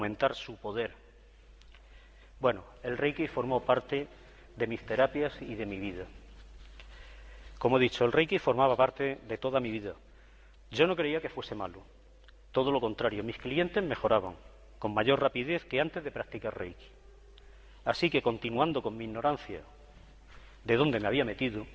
su poder. Bueno, el Reiki formó parte de mis terapias y de mi vida. Como he dicho, el Reiki formaba parte de toda mi vida. Yo no creía que fuese malo. Todo lo contrario, mis clientes mejoraban con mayor rapidez que antes de practicar Reiki. Así que, continuando con mi ignorancia de dónde me había metido,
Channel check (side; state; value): both; identical; correlation 1.00